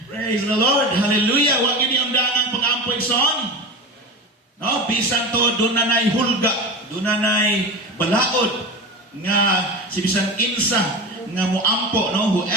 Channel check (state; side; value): normal; both; correlation 0.27